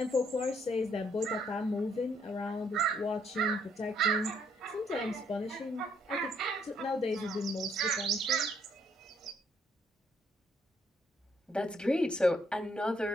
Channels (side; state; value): both; normal; correlation 0.70